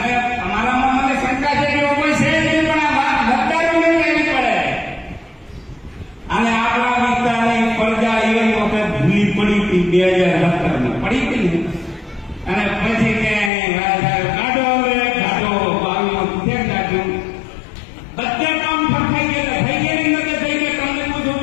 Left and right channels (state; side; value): drops out; right; at 13.5 s